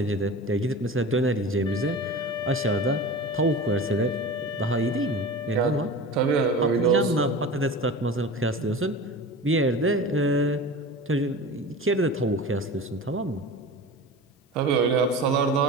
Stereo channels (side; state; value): both; normal; correlation 0.33